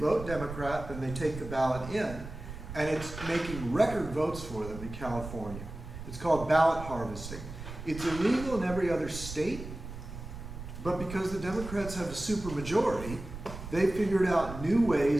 Democrat, then they take the ballot in, and it's making record votes for them in California. It's called ballot harvesting. It's illegal in every other state, but because the Democrats have a supermajority, they figured out new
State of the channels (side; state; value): right; noise; rumble, 11 dB below the sound